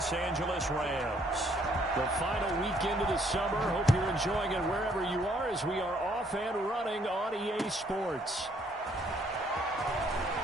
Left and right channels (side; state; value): both; normal; correlation 0.66